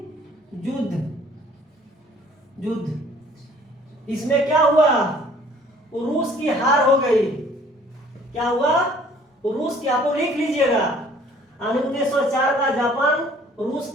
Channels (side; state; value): both; normal; correlation 0.55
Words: युद्ध। इसमें क्या हुआ? रूस की हार हो गई। क्या हुआ? रूस की, आप लोग लिख लीजिएगा, 1904 का जापान रूस